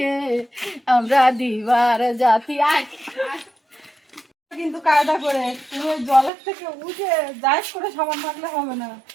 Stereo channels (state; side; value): drops out; left; at 6.3 s